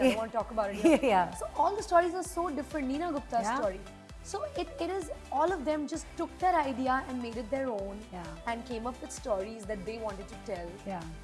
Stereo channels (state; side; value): identical; both; correlation 1.00